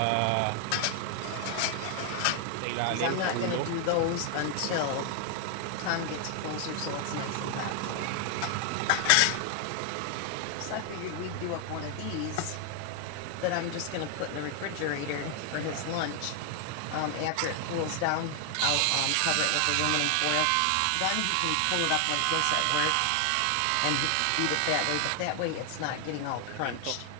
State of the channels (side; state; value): both; different; correlation 0.00